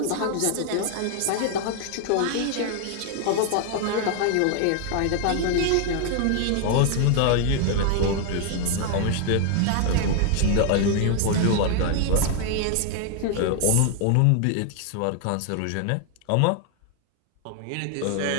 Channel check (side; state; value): both; different; correlation 0.00